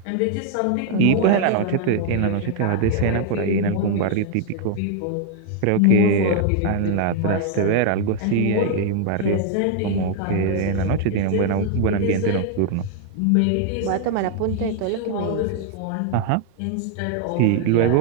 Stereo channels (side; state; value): both; different; correlation 0.00